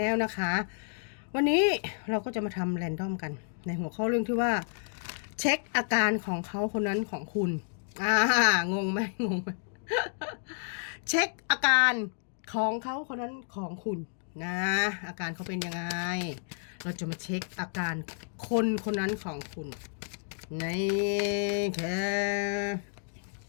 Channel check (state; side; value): silent; right; digital silence